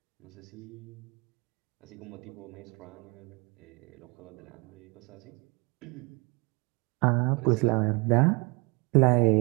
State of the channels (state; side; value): quieter; left; 28.5 dB